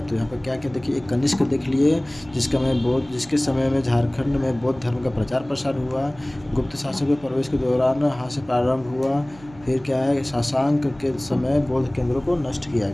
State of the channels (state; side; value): noise; right; hum, 22 dB below the sound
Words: तो यहाँ पर क्या क्या देखिए, एक कनिष्क देख लिए जिसके समय में झारखंड में बौद्ध धर्म का प्रचार प्रसार हुआ, गुप्त शासकों के प्रवेश के दौरान हास्य प्रारंभ हुआ, फिर क्या है, शशांक के समय बौद्ध केंद्रों को नष्ट किया